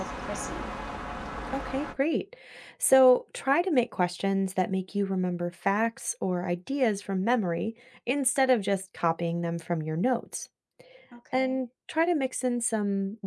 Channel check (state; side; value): identical; both; correlation 1.00